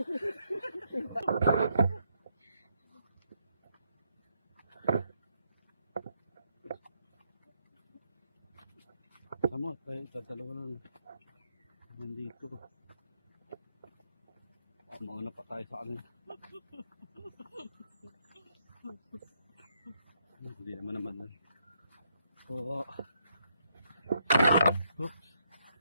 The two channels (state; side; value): inverted; both; correlation -0.75